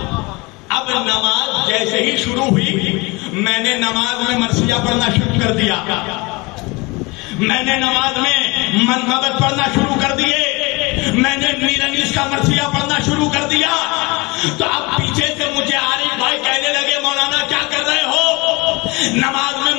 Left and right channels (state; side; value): quieter; right; 25.6 dB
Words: اب نماز جیسے ہی شروع ہوئی میں نے نماز میں مرثیہ پڑھنا شروع کر دیا. میں نے نماز میں منقبت پڑھنا شروع کر دیے. میں نے میر انیس کا مرثیہ پڑھنا شروع کر دیا. تو اب پیچھے سے مجھے عارف بھائی کہنے لگے مولانا کیا کر رہے ہو؟ نماز میں